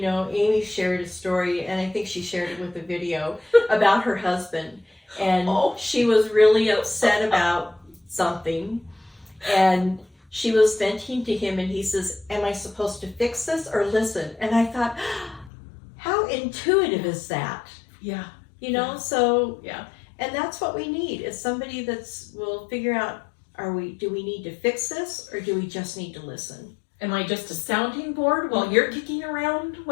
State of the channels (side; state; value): right; drops out; at 15.5 s